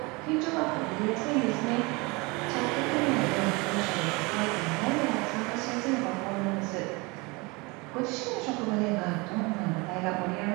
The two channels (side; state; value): left; quieter; 26.2 dB